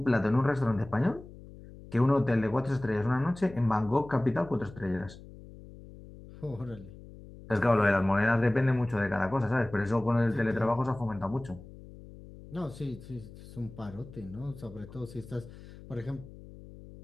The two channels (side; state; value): left; noise; hum, 17 dB below the sound